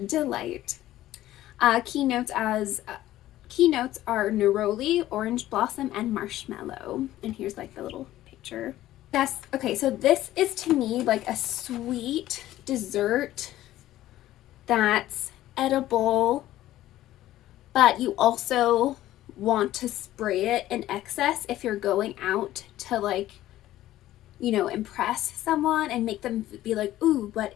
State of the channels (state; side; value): quieter; right; 14.4 dB